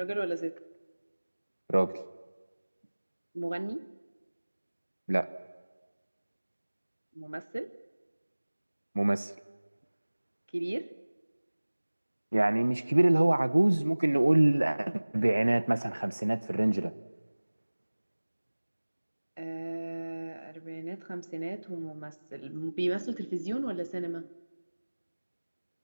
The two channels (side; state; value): both; inverted; correlation -1.00